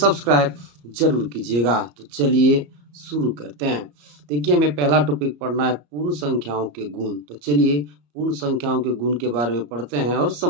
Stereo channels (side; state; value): left; late; 34 ms